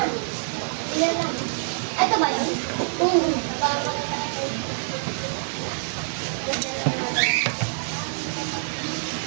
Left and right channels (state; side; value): silent; left; digital silence